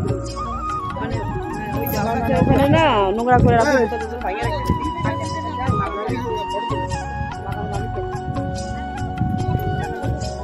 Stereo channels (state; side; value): identical; both; correlation 1.00